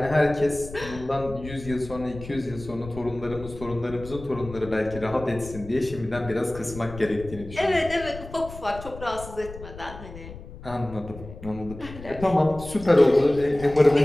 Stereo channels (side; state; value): left; noise; rumble, 14 dB below the sound